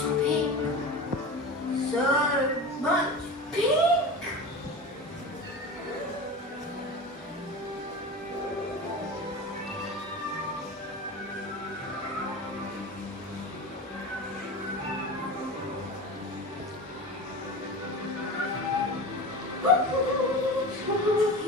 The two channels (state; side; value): normal; both; correlation 0.30